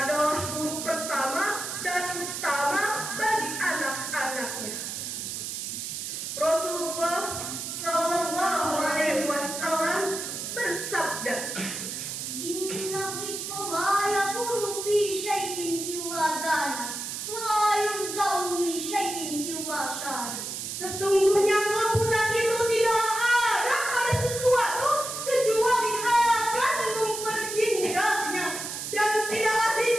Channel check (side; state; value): right; noise; hiss, 5 dB below the sound